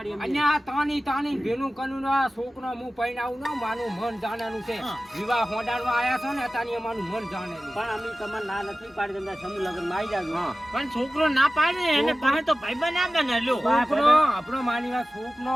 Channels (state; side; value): normal; both; correlation 0.96